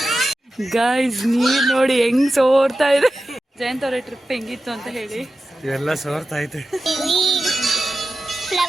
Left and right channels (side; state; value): both; normal; correlation 0.93